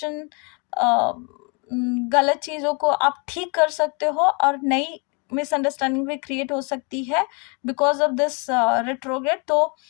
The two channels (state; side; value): quieter; right; 33.7 dB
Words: गलत चीज़ों को आप ठीक कर सकते हो और नई मिसअंडरस्टैंडिंग भी क्रिएट हो सकती है बिकॉज ऑफ दिस रेट्रोग्रेड। तो